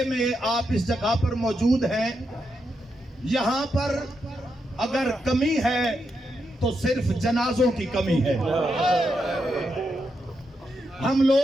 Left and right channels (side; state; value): both; normal; correlation 0.83